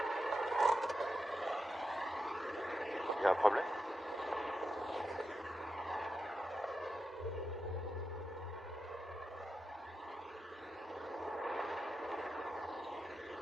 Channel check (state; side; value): normal; both; correlation 0.89